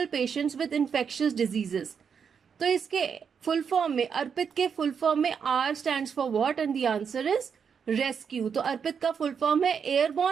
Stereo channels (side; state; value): left; quieter; 6.8 dB